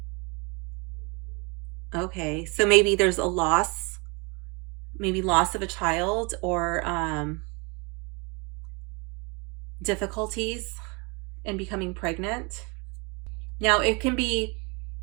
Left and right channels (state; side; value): quieter; left; 30.7 dB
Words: Okay, so maybe there's a loss, maybe loss of a child, or difficulties in becoming pregnant. Now, it can be